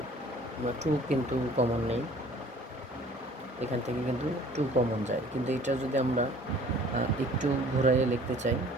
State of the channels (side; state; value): both; normal; correlation 0.52